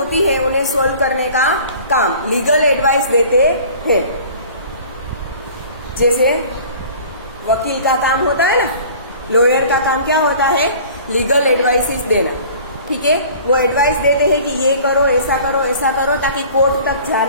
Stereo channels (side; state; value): both; inverted; correlation -0.46